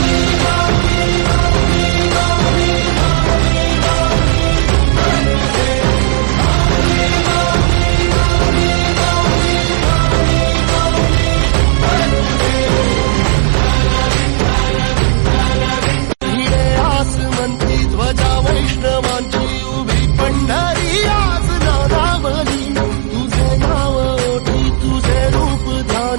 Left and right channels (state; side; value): silent; left; digital silence